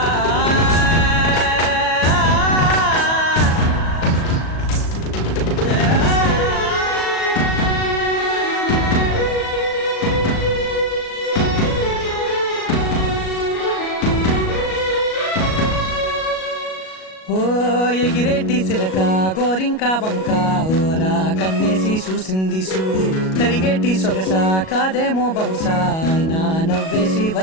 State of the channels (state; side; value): late; right; 37 ms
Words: ఎగిరేటి సిలక గోరింక వంక ఓరా కన్నేసి చూసింది చూడు తరిగేటి సొగస కాదేమో బహుశా అయినా నవ్వేసి